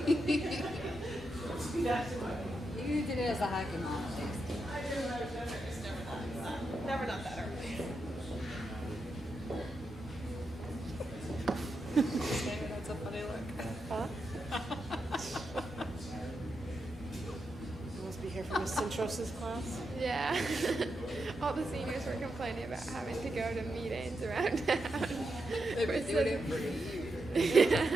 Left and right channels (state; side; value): normal; both; correlation 0.85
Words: You did it as a hockey mom. Never not that early. That's a funny look. Huh? You must be here for Miss Centrosa's class. Yeah. All the seniors were complaining about having to go to meetings around town. They've been doing it for